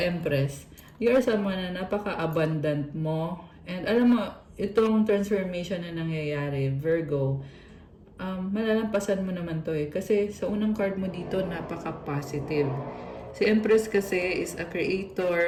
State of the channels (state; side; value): identical; both; correlation 1.00